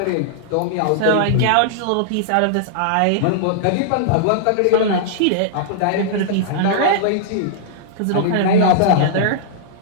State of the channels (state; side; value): different; both; correlation -0.01